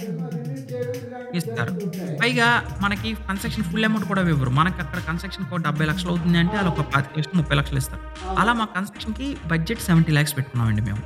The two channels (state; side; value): identical; both; correlation 1.00